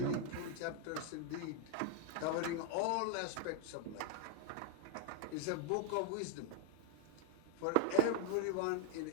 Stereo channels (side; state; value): both; different; correlation 0.01